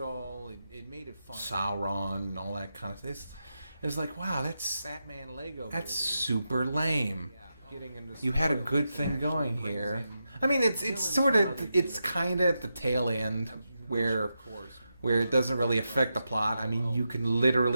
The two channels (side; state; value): both; inverted; correlation -0.87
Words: It made it fun. Sauron and all that kind of thing. It's like, wow, that's Batman Lego. That's super lame. You had a good thing going here. I mean, it's kind of at the tail end where it doesn't really affect the plot. I mean, you can